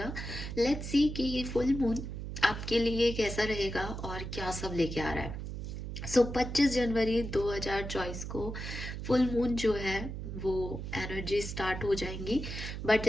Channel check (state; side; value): noise; right; hum, 6 dB below the sound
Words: लेट्स सी कि ये फुल मून आपके लिए कैसा रहेगा और क्या सब लेके आ रहा है। 25 जनवरी 2024 को फुल मून जो है वो एनर्जी स्टार्ट हो जाएंगी। बट